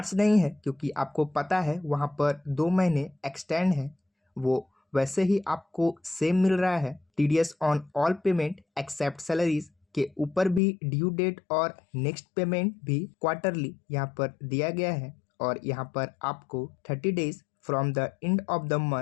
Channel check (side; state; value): right; drops out; at 10.6 s